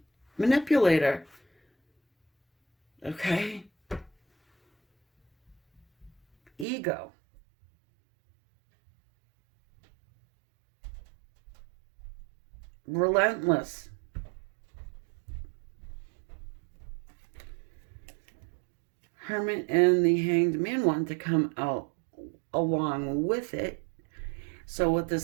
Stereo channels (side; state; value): left; drops out; at 6.7 s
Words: Manipulator. Okay. Ego. Relentless. Hermit and the Hanged Man want to come out along with it. So what